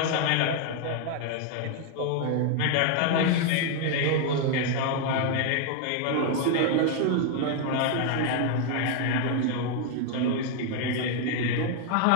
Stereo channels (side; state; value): both; different; correlation 0.00